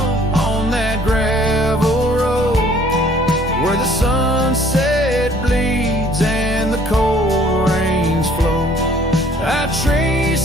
on that gravel road where the sunset bleeds and the cold rains flow. I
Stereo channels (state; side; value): normal; both; correlation 0.58